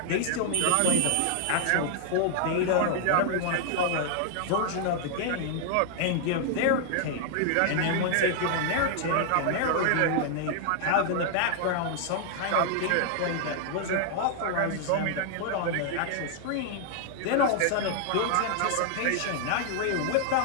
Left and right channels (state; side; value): different; both; correlation 0.00